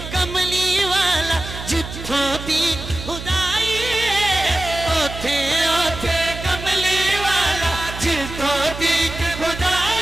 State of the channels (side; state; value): right; noise; hum, 10 dB below the sound